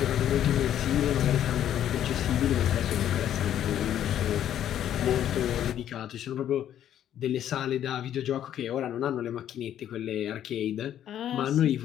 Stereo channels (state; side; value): quieter; right; 10.8 dB